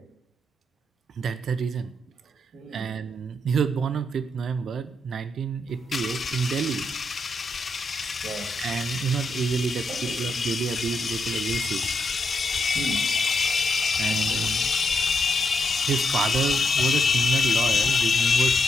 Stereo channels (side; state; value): both; normal; correlation 0.81